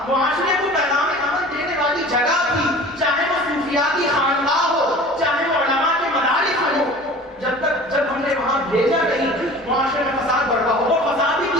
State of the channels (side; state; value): both; normal; correlation 0.42